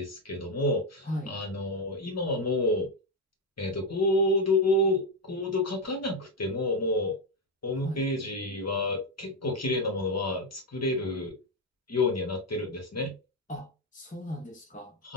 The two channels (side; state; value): both; normal; correlation 0.07